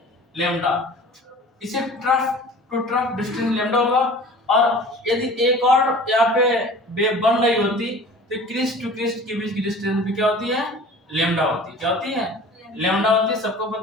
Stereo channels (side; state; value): both; normal; correlation 0.43